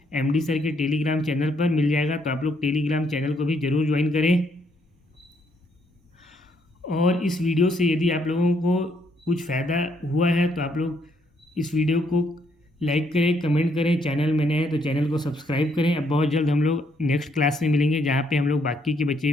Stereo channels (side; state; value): both; normal; correlation 0.72